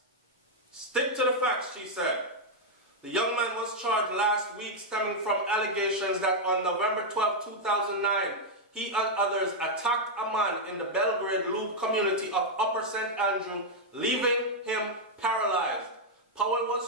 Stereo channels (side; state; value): both; normal; correlation -0.02